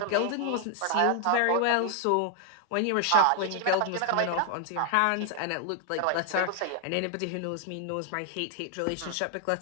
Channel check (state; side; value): different; both; correlation 0.00